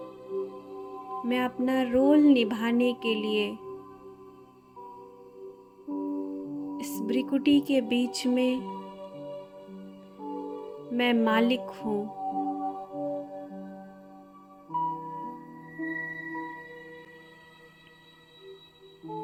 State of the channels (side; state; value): both; identical; correlation 1.00